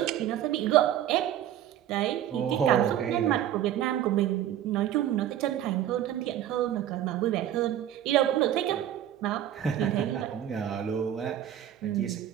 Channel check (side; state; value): left; quieter; 11.3 dB